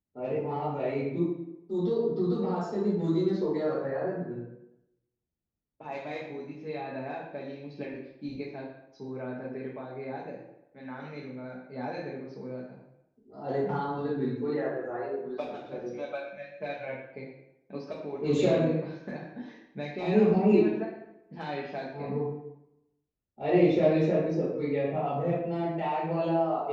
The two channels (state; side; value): identical; both; correlation 1.00